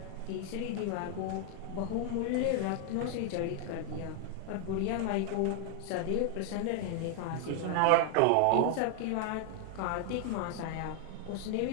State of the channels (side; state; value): both; different; correlation 0.00